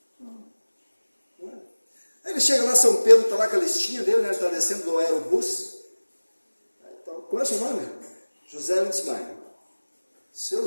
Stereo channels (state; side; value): inverted; both; correlation -1.00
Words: Aí ele chega lá, São Pedro, está lá com a listinha dele, né? Ele está descendo do aerobus. Qual é o seu nome? José Lindsmeyer. Seu